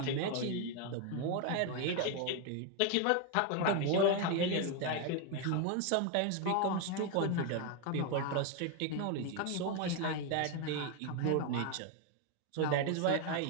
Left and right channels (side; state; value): both; different; correlation 0.01